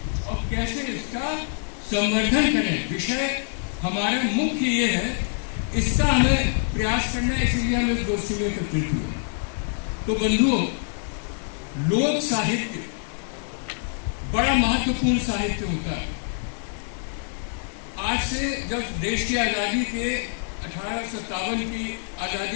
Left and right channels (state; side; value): silent; right; digital silence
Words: और कैसे इसका संवर्धन करें, विषय हमारा मुख्य ये है। इसका हमें प्रयास करना है, इसलिए हम इस गोष्ठी में एकत्रित हुए। तो बंधुओं, लोक साहित्य बड़ा महत्वपूर्ण साहित्य होता है। आज से जब देश की आज़ादी के 1857 की आज़ादी